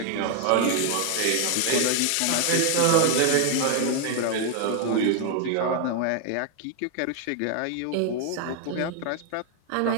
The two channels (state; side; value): different; both; correlation 0.00